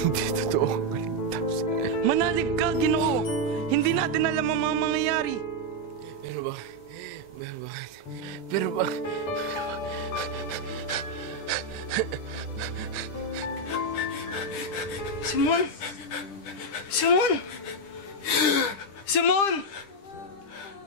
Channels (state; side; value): late; right; 10 ms